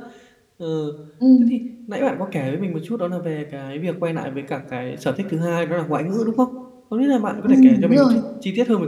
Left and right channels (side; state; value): both; identical; correlation 1.00